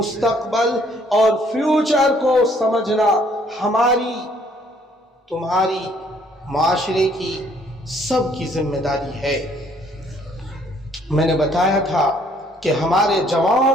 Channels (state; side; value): normal; both; correlation 0.64